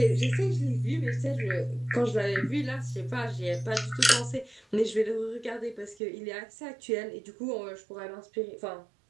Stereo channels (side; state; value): left; drops out; at 6.0 s